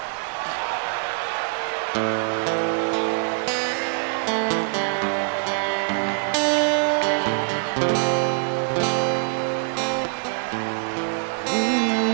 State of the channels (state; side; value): silent; left; 60 dB below the other